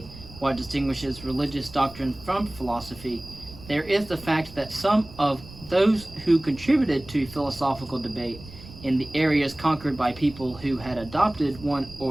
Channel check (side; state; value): right; noise; rumble, 17 dB below the sound